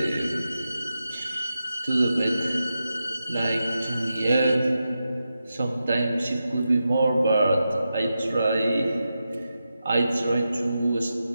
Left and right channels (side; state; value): both; inverted; correlation -0.89